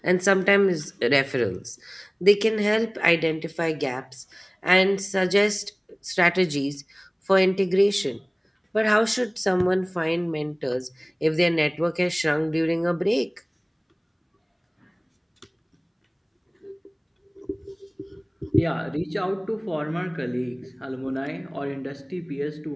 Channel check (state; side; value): identical; both; correlation 1.00